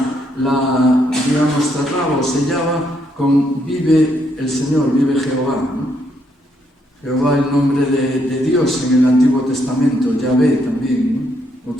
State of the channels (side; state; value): both; normal; correlation 0.74